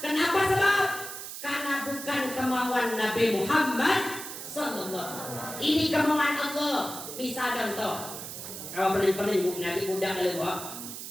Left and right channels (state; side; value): noise; right; hiss, 9 dB below the sound